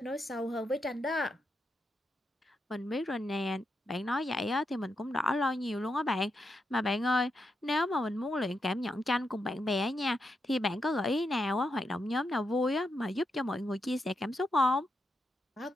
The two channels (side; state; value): both; normal; correlation 0.84